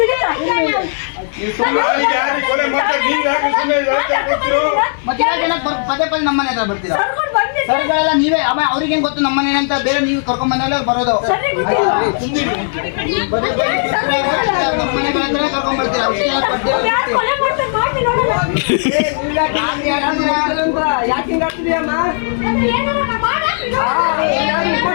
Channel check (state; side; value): silent; right; 57 dB below the other